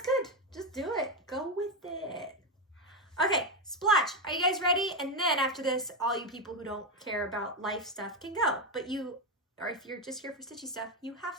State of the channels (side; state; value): both; normal; correlation 0.09